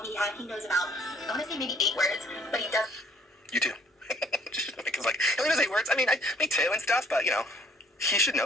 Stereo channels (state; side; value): normal; both; correlation 0.60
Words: he knows about, I want to say maybe 8 words, but he does. You too. Because like, he only knows 8 words. I mean, me too and stuff, but you know, he should